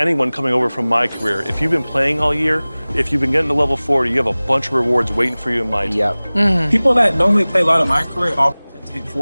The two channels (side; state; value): both; inverted; correlation -1.00